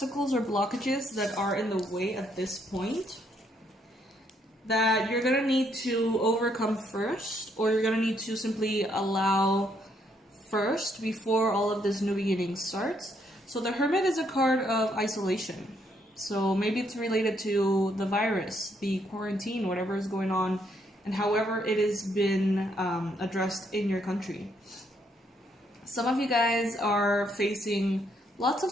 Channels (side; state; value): both; normal; correlation 0.72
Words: or blockages that are in the way at this point that you're going to need to overcome first, or you're going to need to simply allow first before all of this new beginning starts. So the Hermit is a card of isolation. So maybe it's related to the virus, the quarantine, whatever is going on, and however it has been addressed in your country. Some of you guys are facing lots